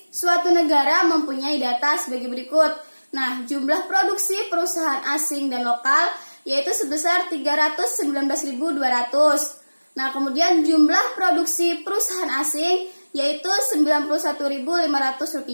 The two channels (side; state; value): both; inverted; correlation -1.00